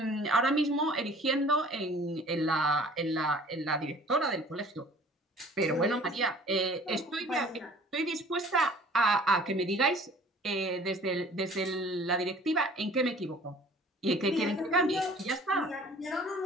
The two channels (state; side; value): normal; both; correlation 0.50